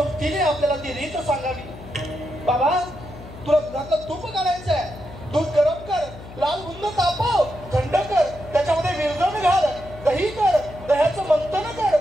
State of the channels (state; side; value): noise; left; hum, 16 dB below the sound